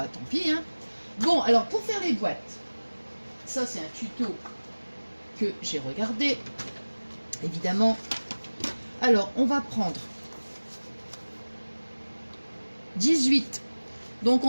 tant pis, hein. Bon, alors, pour faire les boîtes, ça, c'est un tuto que j'ai regardé, évidemment. Alors, on va prendre 18. Donc,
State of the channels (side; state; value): both; inverted; correlation -1.00